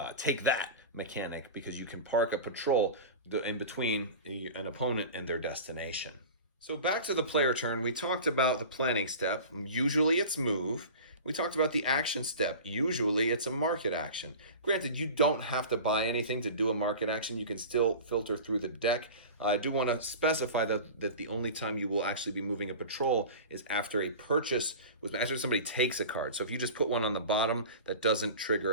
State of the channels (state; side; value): inverted; both; correlation -0.34